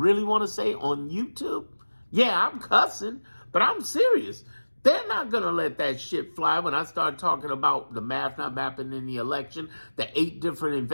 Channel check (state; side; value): inverted; both; correlation -1.00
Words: want to say on YouTube? Yeah, I'm cussing, but I'm serious. They're not going to let that shit fly when I start talking about the math not mapping in the election, the 8 different